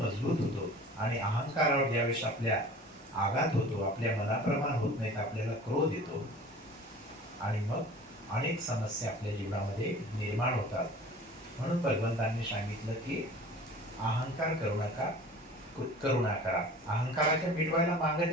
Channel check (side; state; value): both; normal; correlation 0.43